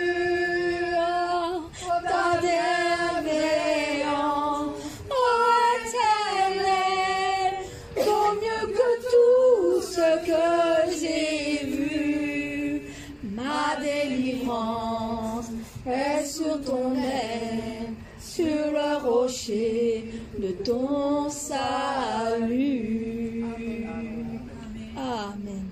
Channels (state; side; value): identical; both; correlation 1.00